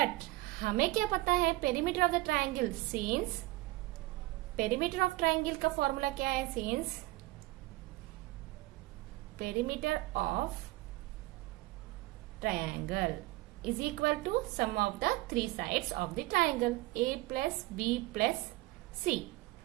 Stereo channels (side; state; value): left; quieter; 19.6 dB